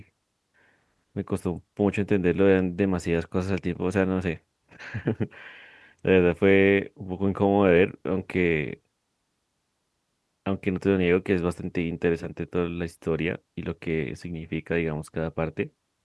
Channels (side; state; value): both; identical; correlation 1.00